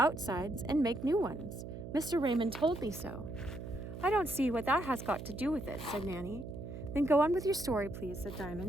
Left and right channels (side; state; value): right; noise; hum, 9 dB below the sound